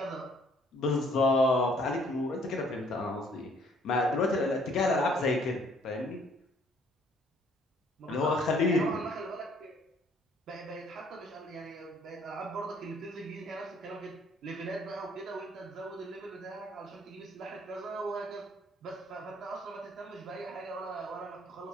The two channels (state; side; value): normal; both; correlation 0.62